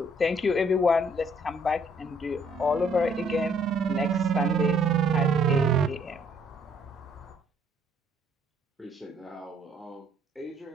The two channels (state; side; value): normal; both; correlation 0.65